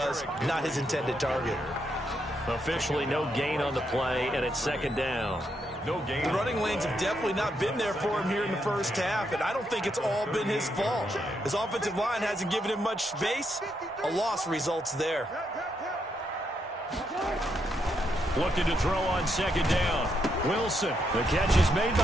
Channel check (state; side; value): normal; both; correlation 0.79